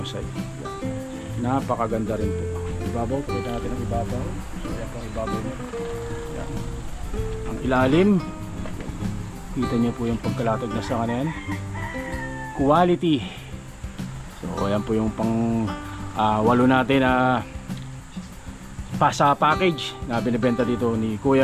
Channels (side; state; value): both; identical; correlation 1.00